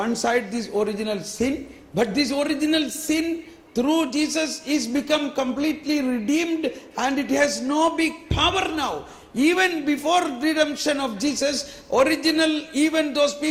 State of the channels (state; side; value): identical; both; correlation 1.00